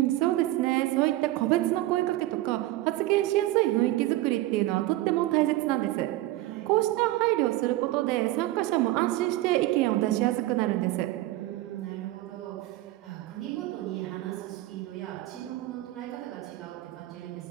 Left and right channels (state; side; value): quieter; left; 16.6 dB